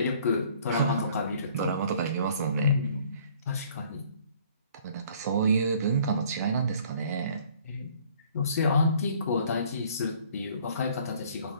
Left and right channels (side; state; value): both; inverted; correlation -0.57